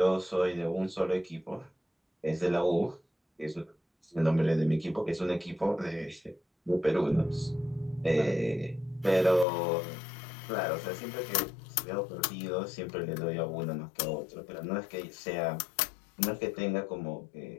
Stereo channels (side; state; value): right; drops out; at 9.5 s